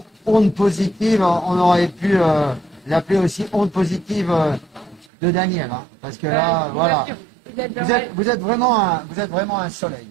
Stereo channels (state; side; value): drops out; left; at 5.1 s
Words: Onde Positive. On aurait pu l'appeler aussi Onde Positive de Daniel. Hein, parce que là, voilà. Vous êtes vraiment un soleil.